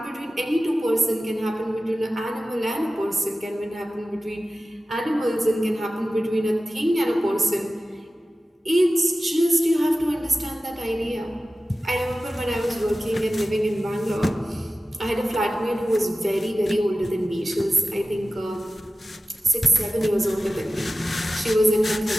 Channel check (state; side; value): normal; both; correlation 0.95